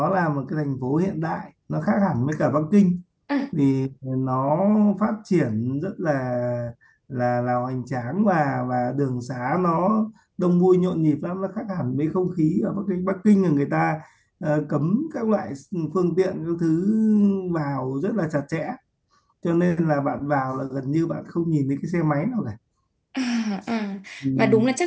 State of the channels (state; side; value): identical; both; correlation 1.00